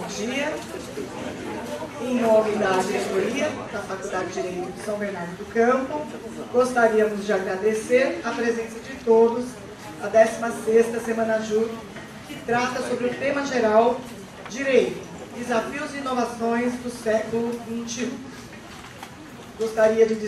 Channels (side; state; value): both; identical; correlation 1.00